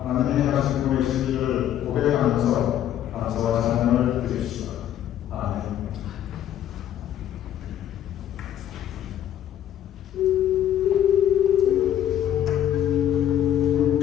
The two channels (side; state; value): right; quieter; 11.0 dB